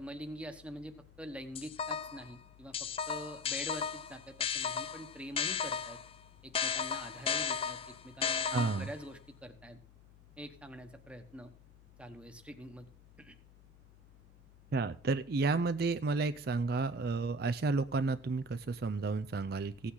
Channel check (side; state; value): left; noise; hum, 23 dB below the sound